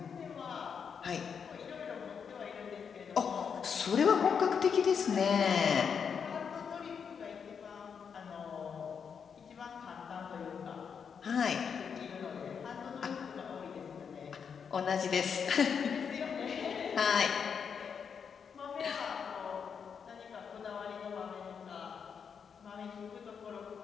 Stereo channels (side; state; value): right; quieter; 6.7 dB